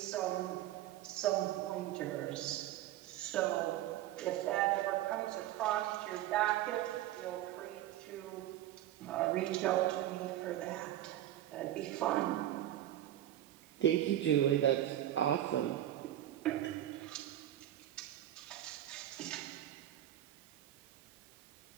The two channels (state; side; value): quieter; left; 13.0 dB